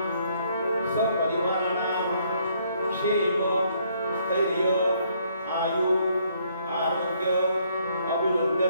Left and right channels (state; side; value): inverted; both; correlation -0.68